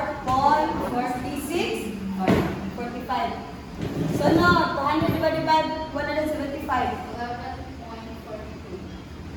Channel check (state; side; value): identical; both; correlation 1.00